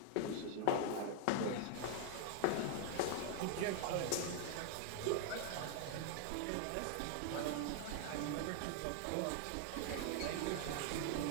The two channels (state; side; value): different; both; correlation 0.00